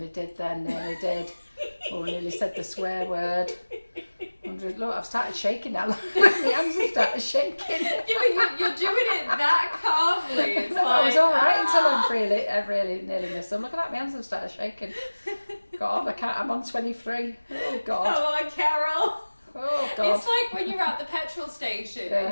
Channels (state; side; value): inverted; both; correlation -1.00